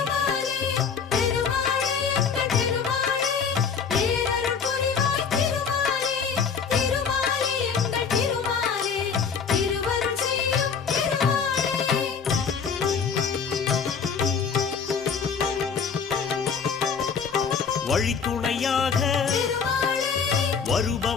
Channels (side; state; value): right; quieter; 6.2 dB